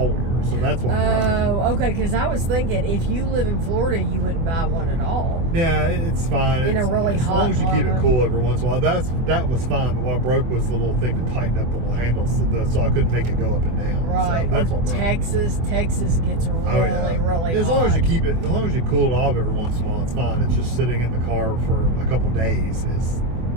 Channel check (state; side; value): late; left; 24 ms